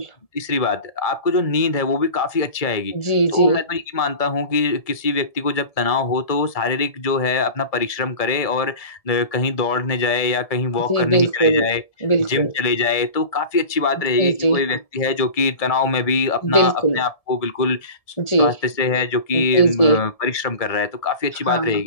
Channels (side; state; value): right; late; 1.7 ms